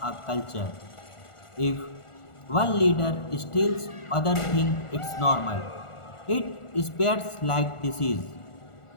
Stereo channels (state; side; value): late; right; 1.4 ms